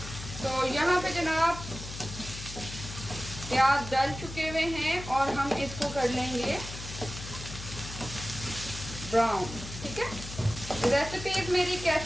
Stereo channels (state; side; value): noise; left; hum, 10 dB below the sound